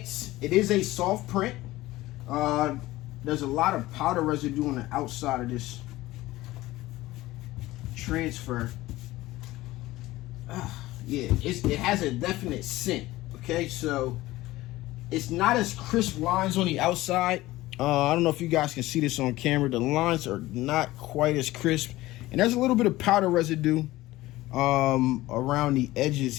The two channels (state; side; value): quieter; right; 17.6 dB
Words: it is a soft print. There's a lot of powder residue on the outside of this transfer. Yeah, it has a definite scent. Okay, so it's not as crisp lines on the outside. I don't know if you guys can see this on camera. The lines are not quite as crisp, and there's a little bit of powder residue around the edges